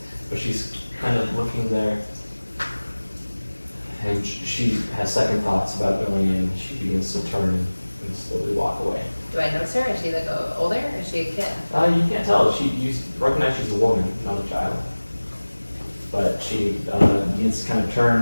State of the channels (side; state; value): both; inverted; correlation -1.00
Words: But she's kind of looking there. And she has second thoughts about going in. She begins to turn and slowly walk away. Do I notice her? Is she like older? Or is she a kid? You can't tell. You recognize she's a woman, not a child. But she begins to kind of